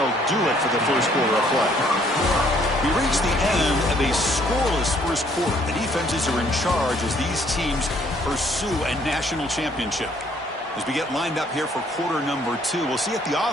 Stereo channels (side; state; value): both; normal; correlation 0.63